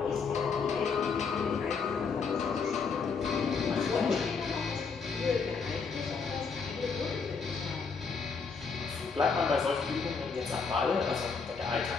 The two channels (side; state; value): right; quieter; 5.2 dB